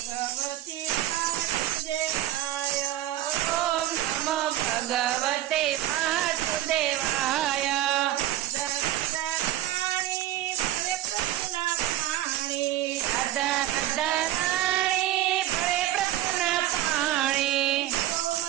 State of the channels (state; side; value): quieter; left; 13.7 dB